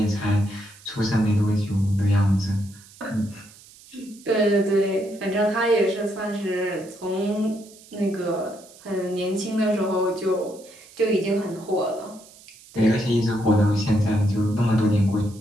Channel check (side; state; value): right; noise; hiss, 23 dB below the sound